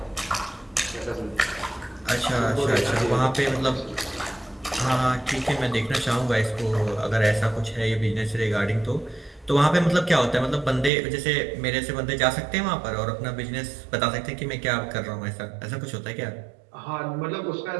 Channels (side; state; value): left; drops out; at 10.9 s